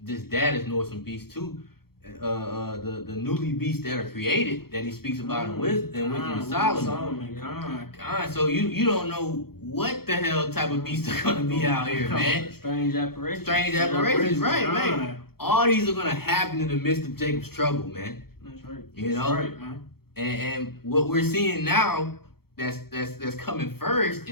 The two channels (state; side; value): late; right; 0.95 ms